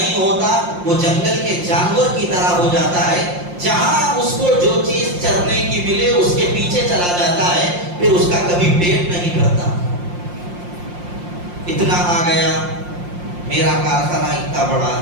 ہوتا وہ جنگل کے جانور کی طرح ہو جاتا ہے، جہاں اس کو جو چیز چرنے کی ملے اس کے پیچھے چلا جاتا ہے، پھر اس کا کبھی پیٹ نہیں بھرتا۔ اتنا آ گیا، میرا کارخانہ اتنا بڑا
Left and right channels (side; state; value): left; late; 5.7 ms